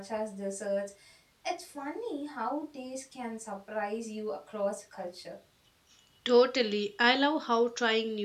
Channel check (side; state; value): both; identical; correlation 1.00